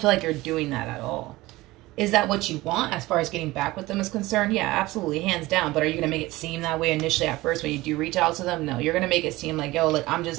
feel like you're doing that at all. Is that what you want as far as getting back with them is concerned? Yeah, absolutely, hands down. But are you going to make it seem that way initially at first when you do reach out to them? No, you're going to make it seem like, yo, look, I'm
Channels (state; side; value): quieter; left; 19.1 dB